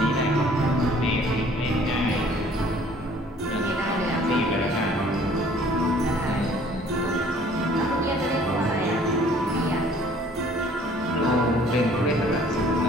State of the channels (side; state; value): both; normal; correlation 0.55